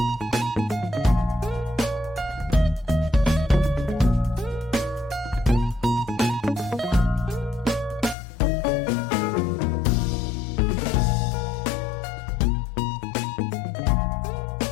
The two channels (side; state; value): right; drops out; at 8.2 s